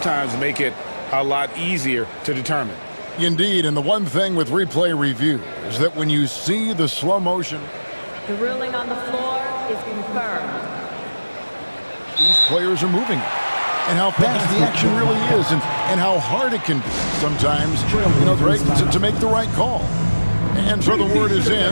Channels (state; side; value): inverted; both; correlation -1.00